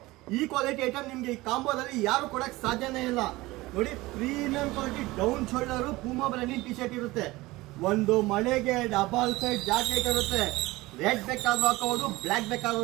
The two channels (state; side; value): quieter; left; 19.9 dB